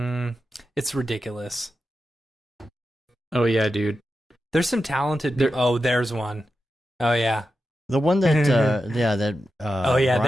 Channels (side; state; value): both; normal; correlation 0.90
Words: It's ridiculous. Oh, yeah, dude. There's some talented. There- Oh, there's one. Oh yeah. The one that, Oh, yeah,